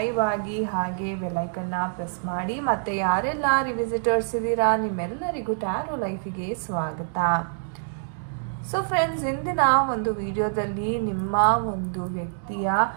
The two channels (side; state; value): left; silent; digital silence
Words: ಆಗಿ ಹಾಗೆ ಬೆಲ್ಲೈಕನ್ನ ಪ್ರೆಸ್ ಮಾಡಿ. ಮತ್ತು ಯಾರೆಲ್ಲ ರಿವಿಸಿಟರ್ಸ್ ಇದ್ದೀರಾ ನಿಮ್ಮೆಲ್ಲರಿಗೂ ಟ್ಯಾರೋ ಲೈಫಿಗೆ ಸ್ವಾಗತ. ಸೊ ಫ್ರೆಂಡ್ಸ್, ಇಂದಿನ ಒಂದು ವಿಡಿಯೋದಲ್ಲಿ ನಿಮ್ಮ ಒಂದು ವ್ಯಕ್ತಿಯ